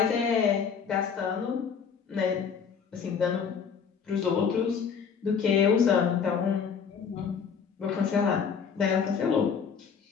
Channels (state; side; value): quieter; right; 6.6 dB